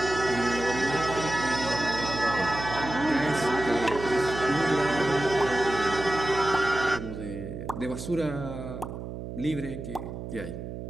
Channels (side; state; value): right; noise; hum, 8 dB below the sound